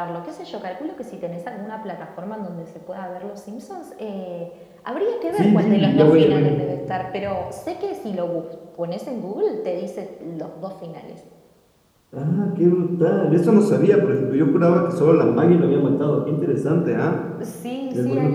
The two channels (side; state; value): both; identical; correlation 1.00